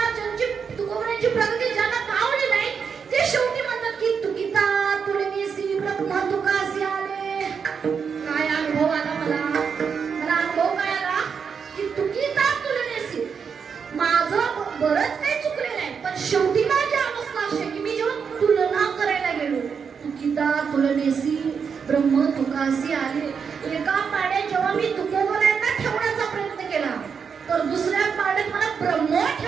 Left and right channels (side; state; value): left; quieter; 6.4 dB